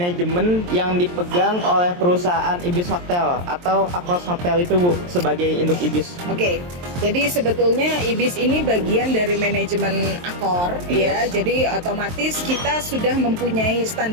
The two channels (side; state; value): left; late; 23 ms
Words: yang dipegang oleh perusahaan Ibis Hotel atau Akros Hotel itu Bu sebagai induk Ibis? Oke, jadi sebetulnya Ibis ini bagian dari manajemen Accor ya. Yes. Jadi otomatis kita sudah mempunyai